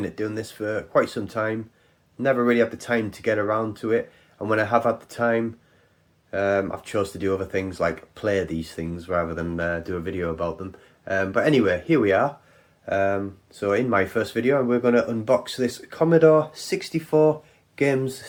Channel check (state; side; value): identical; both; correlation 1.00